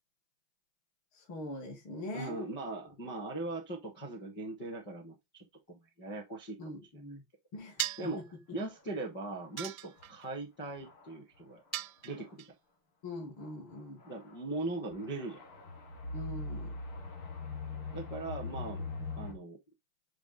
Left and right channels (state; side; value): late; right; 5.8 ms